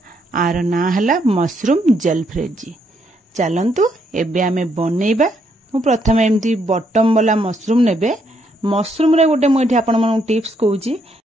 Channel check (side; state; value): both; normal; correlation 0.74